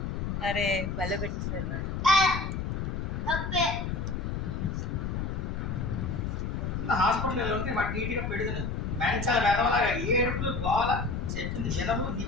అరే బల పెట్టారు హాస్పిటల్ ఉంటే వాటి నీట్గా పెడుతుంది. మెంటల్ వెదవలాగా ఏడుపులు గోల చెప్పింది వినము.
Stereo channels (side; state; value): left; noise; rumble, 2 dB below the sound